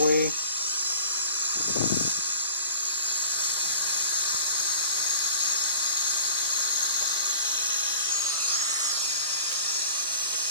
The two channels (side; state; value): both; inverted; correlation -0.42